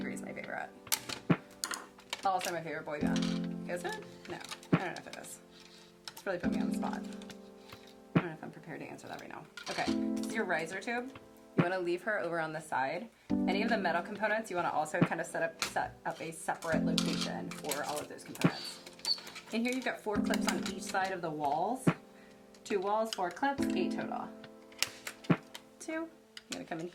my favorite. Also my favorite boy band. Is it? No, I don't know if it is. It's really put me on the spot. I don't know if I'm prepared to answer that right now. Okay, this is your riser tube. You want to leave her over on the side. Any of the metal components, you want to also kind of set up a separate location for all of those components. In here, you've got 4 clips on each side of the walls. 2 walls, 4 clips, 8 total. 2. You're going to come in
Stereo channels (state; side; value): identical; both; correlation 1.00